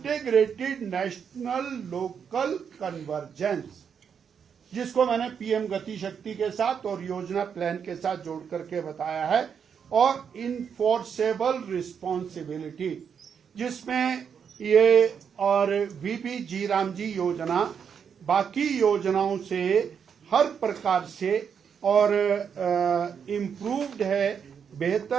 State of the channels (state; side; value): quieter; left; 7.2 dB